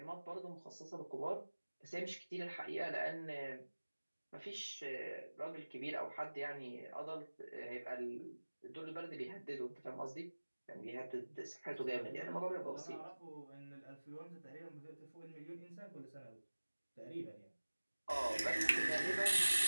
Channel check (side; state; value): both; inverted; correlation -1.00